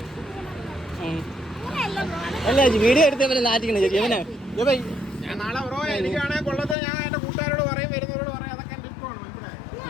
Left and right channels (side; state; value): right; drops out; at 6.8 s